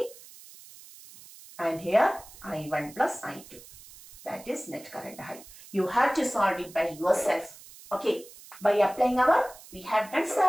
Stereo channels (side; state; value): right; noise; hiss, 19 dB below the sound